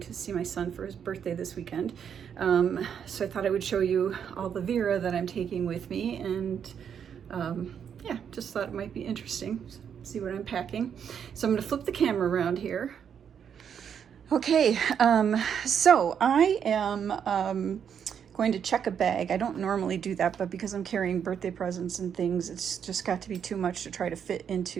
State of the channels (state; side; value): quieter; left; 7.9 dB